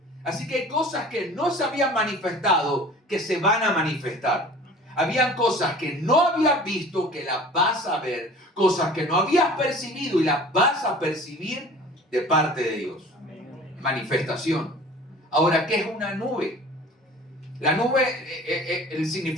Así que hay cosas que no se habían manifestado que se van a manifestar. Habían cosas que no habías visto que las vas a ver, cosas que no habías percibido y las vas a percibir de parte de Dios. Manifestación. Ahora, ¿qué es una nube? La nube, el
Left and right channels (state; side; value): normal; both; correlation 0.44